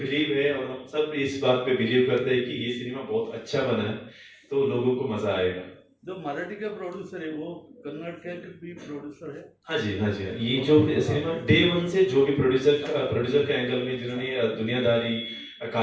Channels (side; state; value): both; identical; correlation 1.00